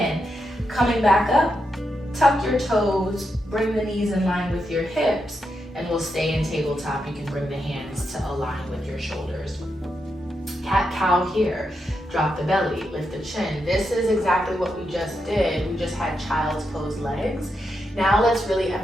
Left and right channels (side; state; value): both; normal; correlation 0.84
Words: Coming back up, tuck your toes, bring the knees in line with your hips, and we'll stay in tabletop. You can bring the hands to align with your shoulders. Cat-cow here. Drop the belly, lift the chin. This is exactly what we just did. We just had child's pose legs. Now let's really